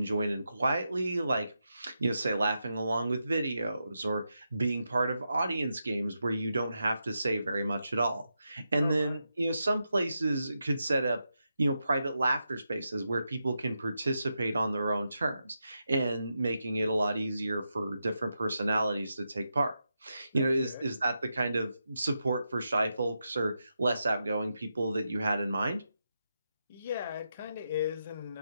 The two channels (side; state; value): both; inverted; correlation -0.87